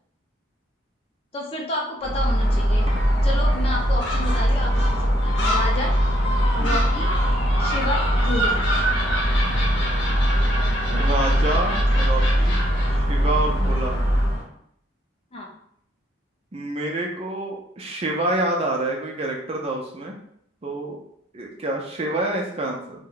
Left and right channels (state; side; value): normal; both; correlation 0.72